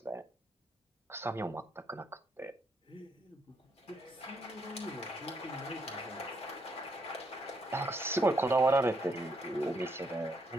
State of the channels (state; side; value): normal; both; correlation 0.74